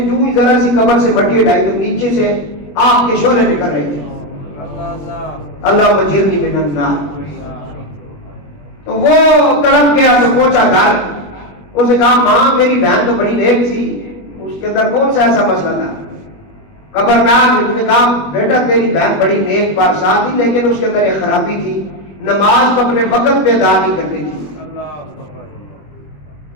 ہی ذرا سی قبر سے مٹی ہٹائی تو نیچے سے آگ کے شعلے نکل رہے تھے. اللہ مجیرنی من النار. تو وہ تڑپ گیا تو پہنچا گھر، اس نے کہا ماں میری بہن تو بڑی نیک تھی، اس کے اندر کون سا ایسا مسئلہ تھا؟ خبردار. نے کہا بیٹا تیری بہن بڑی نیک بارسا تھی، لیکن اس کے اندر ایک خرابی تھی، نماز کو اپنے وقت پہ ادا نہیں کرتی تھی.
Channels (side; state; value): right; late; 21 ms